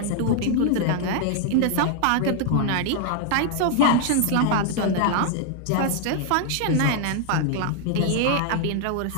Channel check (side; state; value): both; different; correlation 0.00